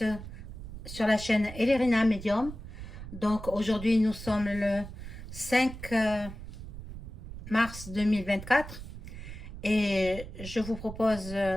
sur la chaîne Elerina Medium. Donc aujourd'hui nous sommes le 5 mars 2024 et je vous propose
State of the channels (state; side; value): noise; right; rumble, 11 dB below the sound